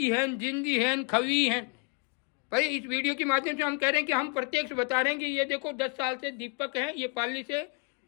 है, जिंदी है, खवी है। भाई इस वीडियो के माध्यम से हम कह रहे हैं कि हम प्रत्यक्ष बता रहे हैं कि ये देखो 10 साल से दीपक है, ये पाली से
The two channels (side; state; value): right; quieter; 31.6 dB